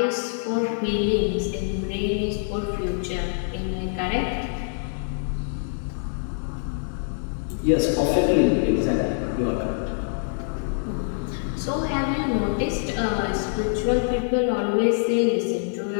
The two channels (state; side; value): silent; right; digital silence